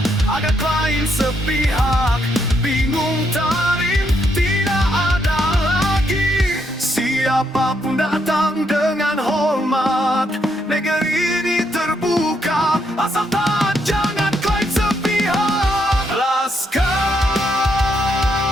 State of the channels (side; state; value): both; normal; correlation 0.76